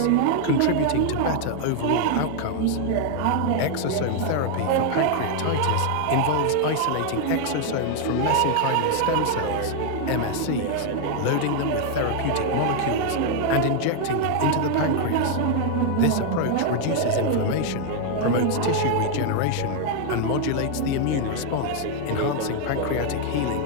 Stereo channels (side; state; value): both; different; correlation 0.00